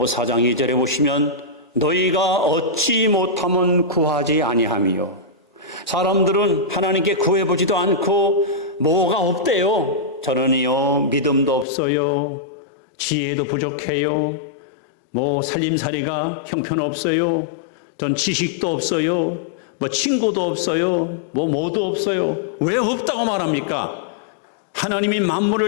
4장 2절에 보시면 너희가 얻지 못하면 구하지 아니하며, 사람들은 하나님께 구해보지도 않고 뭐가 없대요. 저는요 믿음도 없어요, 지혜도 부족해요, 뭐 살림살이가 형편없어요, 전 지식도 없어요, 뭐 친구도 없어요, 뭐도 없어요. 왜 없다고 말합니까? 하나님이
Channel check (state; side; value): drops out; right; at 11.7 s